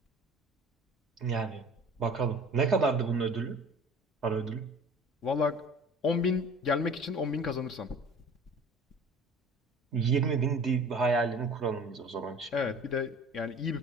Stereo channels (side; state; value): both; normal; correlation 0.44